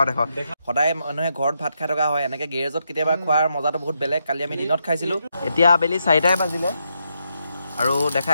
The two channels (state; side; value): inverted; both; correlation -0.81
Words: সদায় মানুহে ঘৰত ভাত খাই থকা হয় এনেকৈ গেৰেজত কেতিয়াবা খোৱাৰ মজাটো বহুত বেলেগ কালি আমি দিনত খাইছিলোঁ এতিয়া আবেলি 4টাই বাজিলে আৰু